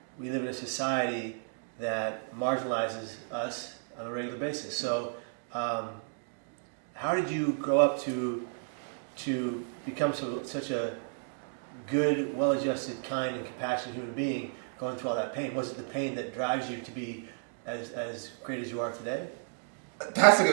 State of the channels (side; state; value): left; silent; digital silence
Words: we live in a society that marginalizes us on a regular basis. So, how did you grow up to become such a good, well-adjusted, kind, and compassionate human being going through all that pain? Was it the pain that drives you to be as great as you are today? That's a